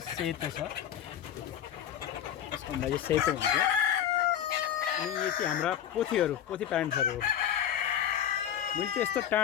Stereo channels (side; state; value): right; quieter; 9.9 dB